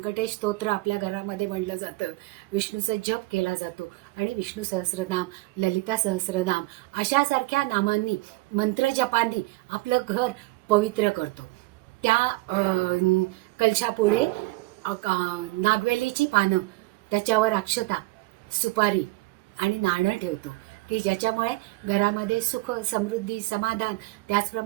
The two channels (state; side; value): quieter; left; 21.5 dB